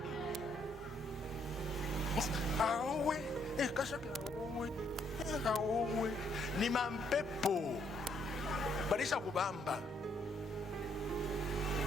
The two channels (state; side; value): normal; both; correlation 0.70